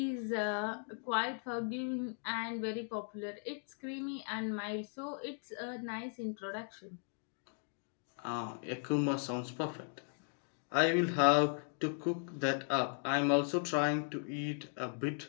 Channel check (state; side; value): silent; right; 53 dB below the other